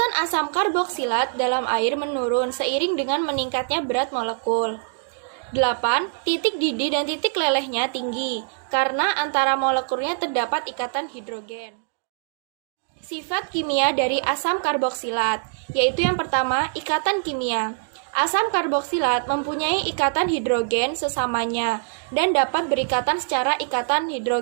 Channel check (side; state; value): left; silent; digital silence